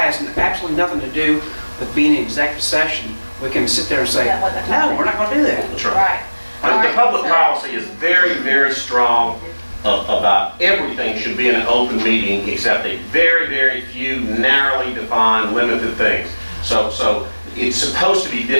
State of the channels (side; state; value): both; inverted; correlation -1.00